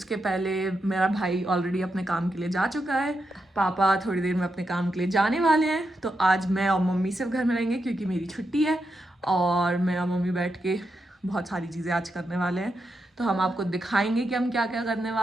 पहले मेरा भाई ऑलरेडी अपने काम के लिए जा चुका है, पापा थोड़ी देर में अपने काम के लिए जाने वाले हैं। तो आज मैं और मम्मी सिर्फ घर में रहेंगे क्योंकि मेरी छुट्टी है और मैं और मम्मी बैठ के बहुत सारी चीज़ें आज करने वाले हैं। तो हम आपको दिखाएंगे कि हम क्या क्या करने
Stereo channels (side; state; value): both; normal; correlation 0.85